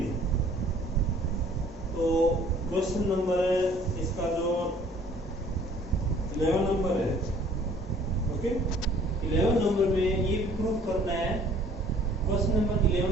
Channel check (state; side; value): normal; both; correlation 0.55